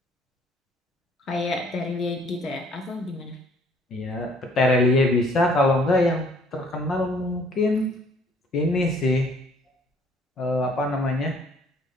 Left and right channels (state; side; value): normal; both; correlation 0.60